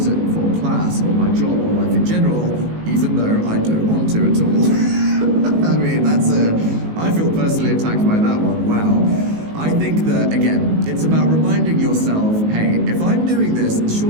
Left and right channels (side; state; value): left; late; 19 ms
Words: for class or my job or life in general, even though I don't want to at all? I mean, I feel personally attacked by that one, wow. I think that, again, it's about reminding yourself, hey, if I'm doing this,